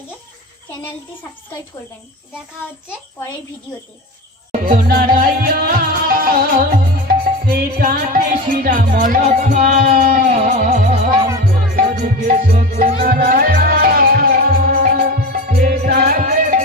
চ্যানেলটি সাবস্ক্রাইব করবেন। দেখা হচ্ছে পরের ভিডিওতে।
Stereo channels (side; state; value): both; normal; correlation 0.27